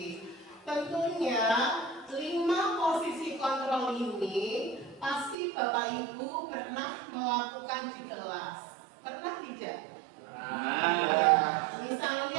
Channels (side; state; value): left; drops out; at 5.4 s